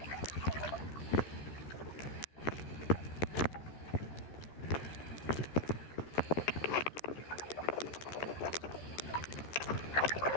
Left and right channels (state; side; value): late; right; 14 ms